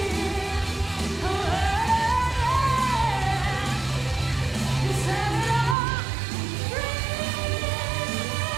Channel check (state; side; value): drops out; left; at 5.8 s